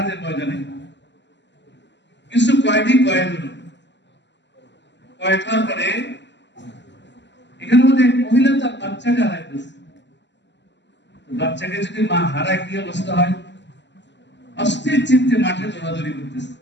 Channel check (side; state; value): right; late; 0.52 ms